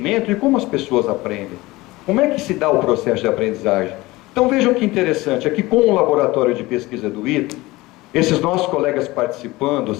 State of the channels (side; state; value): right; quieter; 20.3 dB